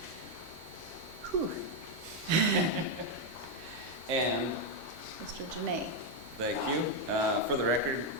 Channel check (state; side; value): normal; both; correlation 0.02